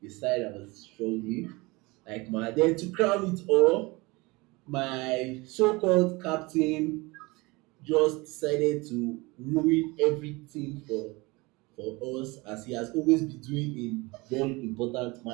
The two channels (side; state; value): left; quieter; 24.2 dB